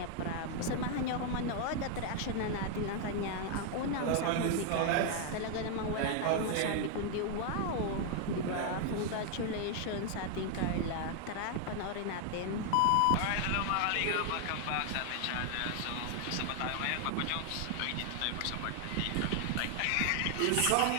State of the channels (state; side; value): different; both; correlation 0.00